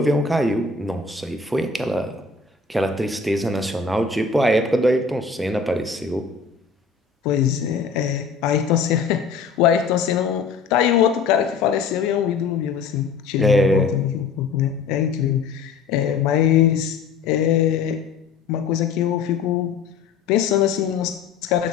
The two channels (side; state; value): right; quieter; 5.1 dB